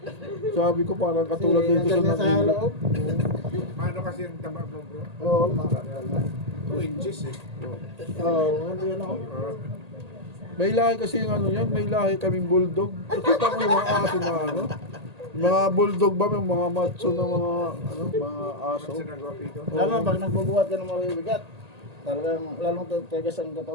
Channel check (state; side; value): late; left; 1.8 ms